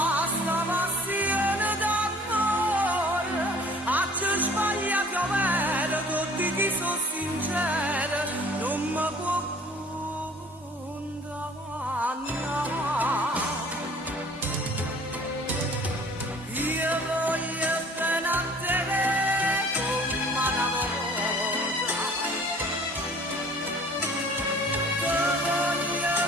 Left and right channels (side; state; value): both; normal; correlation 0.51